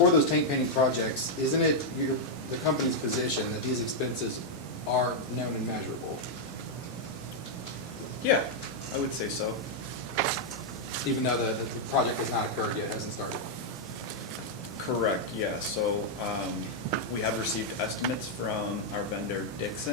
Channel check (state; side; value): normal; both; correlation -0.03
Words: those tank painting projects, isn't it the company's position that these expenses are known and measurable? Yeah, I would say so. Even though the project has not occurred yet, hasn't started? Correct, yeah. So we have received estimates from our vendor